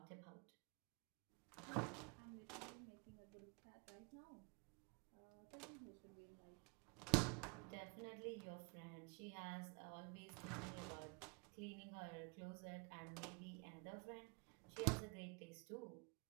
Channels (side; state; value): left; quieter; 33.2 dB